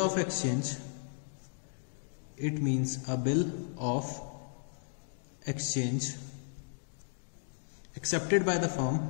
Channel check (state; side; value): silent; right; digital silence